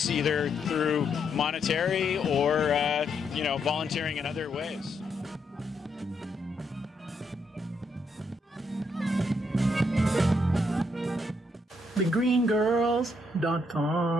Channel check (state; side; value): normal; both; correlation 0.77